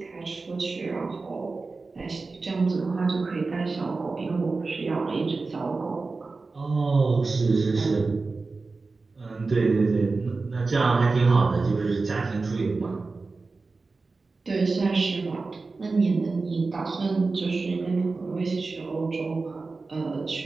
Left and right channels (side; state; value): left; quieter; 3.9 dB